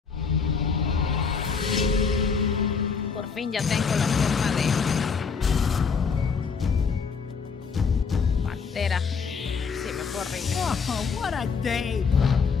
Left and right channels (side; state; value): right; quieter; 5.5 dB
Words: Por fin ya tengo la forma de pantera. Sí, me fue horrible. Oh, what a day!